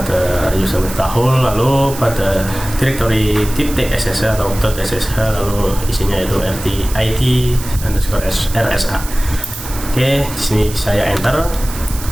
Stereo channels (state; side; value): noise; right; hiss, 12 dB below the sound